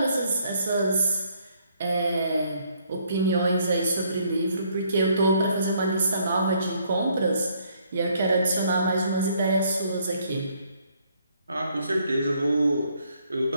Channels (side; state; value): both; inverted; correlation -0.68